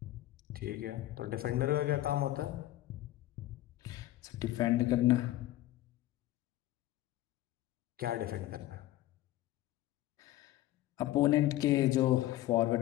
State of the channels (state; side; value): quieter; right; 15.3 dB